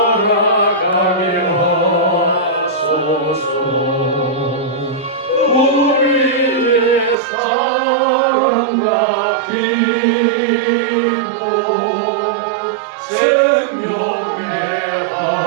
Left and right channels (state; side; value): drops out; left; at 7.2 s